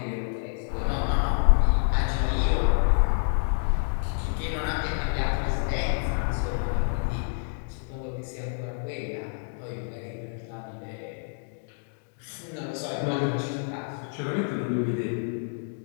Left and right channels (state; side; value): silent; right; digital silence